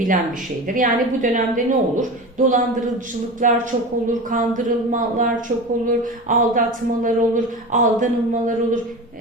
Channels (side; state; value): both; normal; correlation 0.29